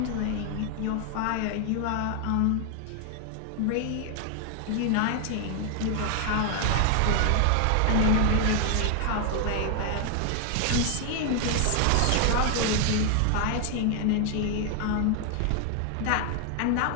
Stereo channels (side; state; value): both; different; correlation 0.00